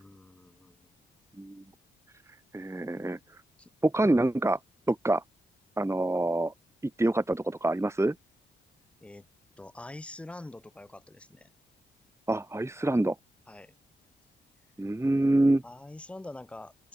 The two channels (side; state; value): both; normal; correlation 0.93